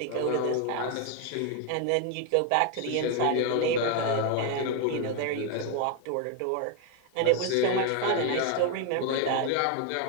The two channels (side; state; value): both; different; correlation 0.01